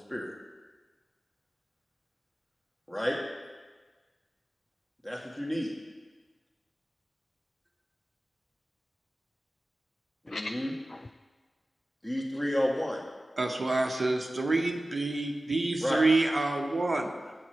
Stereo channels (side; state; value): both; normal; correlation 0.96